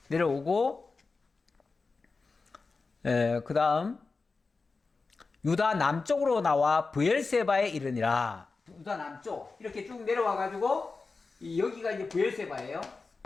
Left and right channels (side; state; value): right; quieter; 4.1 dB